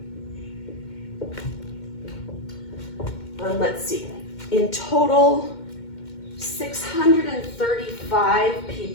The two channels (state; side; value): late; right; 2.1 ms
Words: And let's see, in total, 635